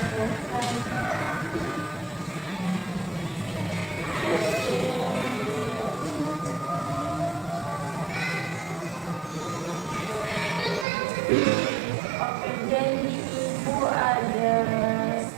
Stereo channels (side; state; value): left; drops out; at 10.9 s